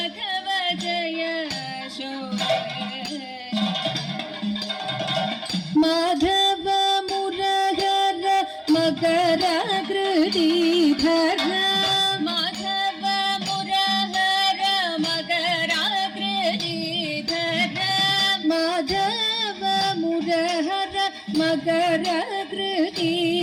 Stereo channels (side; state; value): both; identical; correlation 1.00